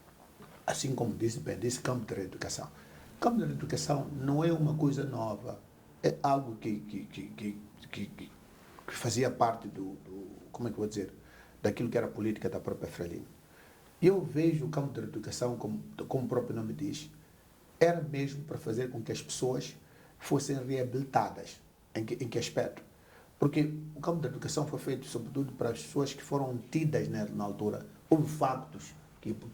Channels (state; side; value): identical; both; correlation 1.00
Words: assim como disse campo da reeducação. O campo da reeducação não é uma coisa nova, é algo que fazia parte como é que eu vou dizer, daquilo que era a política da própria Frelimo. Eu vejo o campo da educação, como o próprio nome diz, era mesmo para fazer com que as pessoas fossem reabilitadas. Em que aspecto? Porque o campo da educação foi feito sobretudo para as pessoas que foram tidas na altura. Houve factos que